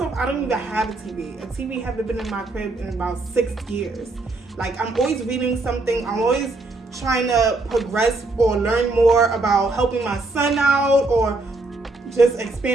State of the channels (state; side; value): quieter; left; 3.1 dB